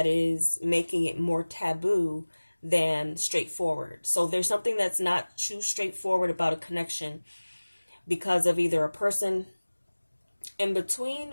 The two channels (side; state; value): both; inverted; correlation -1.00